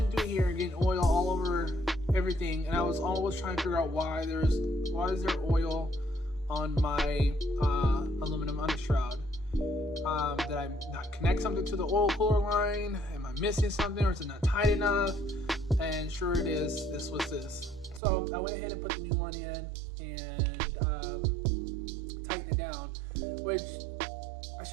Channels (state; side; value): drops out; left; at 18.0 s